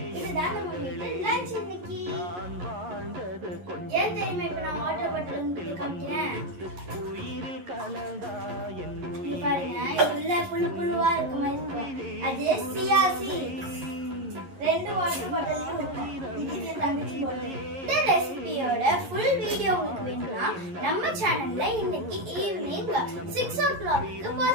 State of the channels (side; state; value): left; late; 11 ms